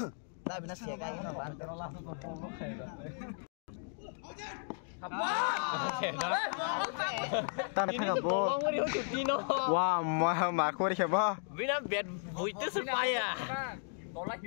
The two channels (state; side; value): silent; right; 54 dB below the other